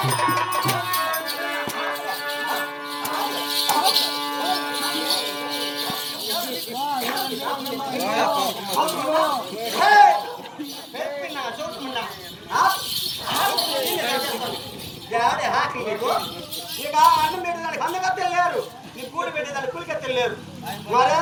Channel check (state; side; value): identical; both; correlation 1.00